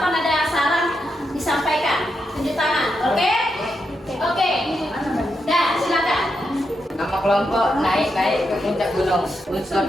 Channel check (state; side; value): normal; both; correlation 0.84